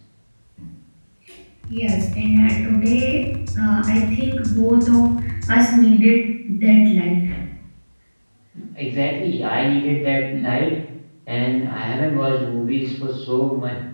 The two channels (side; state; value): both; inverted; correlation -1.00